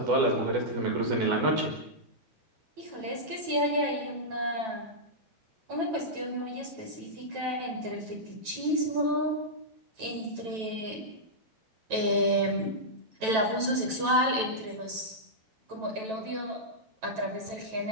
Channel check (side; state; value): left; late; 9.1 ms